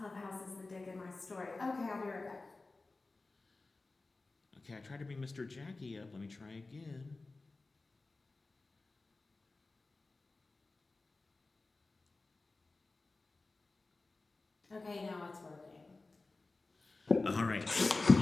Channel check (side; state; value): right; quieter; 3.4 dB